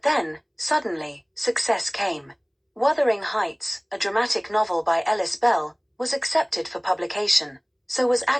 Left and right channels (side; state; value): both; identical; correlation 1.00